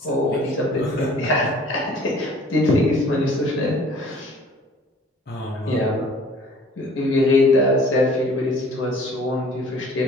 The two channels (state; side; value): normal; both; correlation 0.52